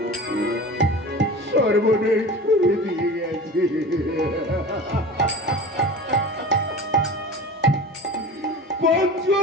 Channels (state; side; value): normal; both; correlation 0.35